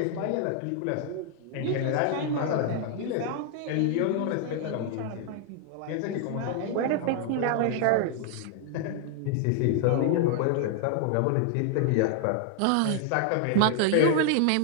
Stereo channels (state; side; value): different; both; correlation 0.00